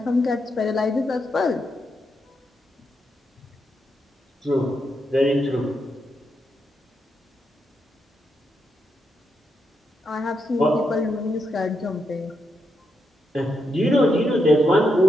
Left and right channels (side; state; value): both; normal; correlation 0.82